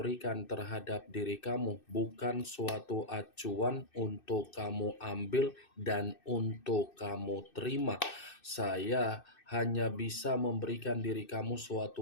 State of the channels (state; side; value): late; right; 2.6 ms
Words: terhadap diri kamu bukan suatu acuan untuk kamu ambil dan untuk kamu terima. Saya hanya bisa memberikan diri kamu